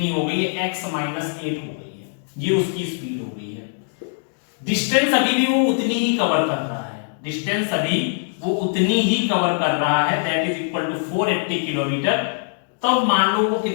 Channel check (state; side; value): silent; right; 64 dB below the other